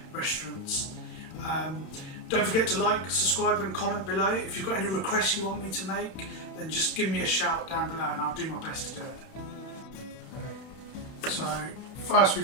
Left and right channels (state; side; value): late; right; 31 ms